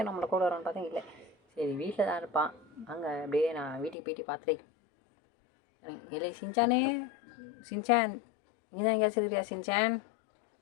நம்மளை கூட வரோன்னு பார்த்தா இல்லை. சரி வீட்டில் தான் இருப்பான். அங்கே அப்படியே நான் வீட்டுக்கு போயிட்டு பார்த்துட்டேன். இல்லை சின்சானே, சின்சான் நீ தான் எங்கேயாச்சும் இருக்கிறியா சின்சான்?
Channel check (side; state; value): right; drops out; at 4.0 s